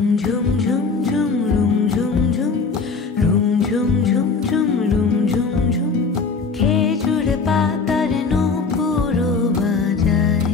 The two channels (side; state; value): right; quieter; 4.6 dB